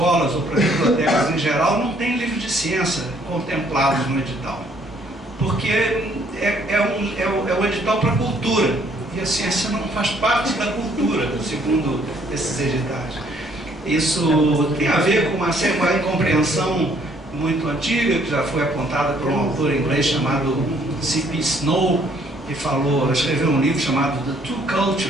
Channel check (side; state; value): both; normal; correlation 0.64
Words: ou para as bibliotecas em geral, não tem livro de ciência contemplados no edital. Porque é um edital para a cultura, e a ciência não faz parte da cultura, segundo esses editais. Isso tem a ver com uma incompreensão muito antiga, que já foi apontada por um autor inglês chamado C.P. Snow, que escreveu um livro chamado The Two